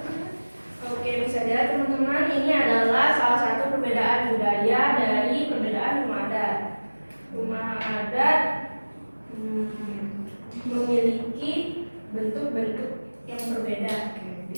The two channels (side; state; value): both; inverted; correlation -1.00